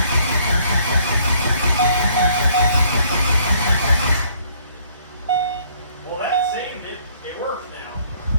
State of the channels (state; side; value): inverted; both; correlation -0.63